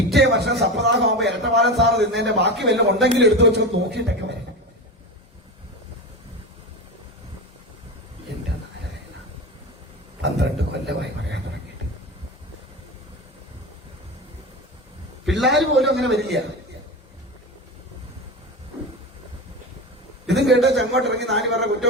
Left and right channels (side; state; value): both; normal; correlation 0.24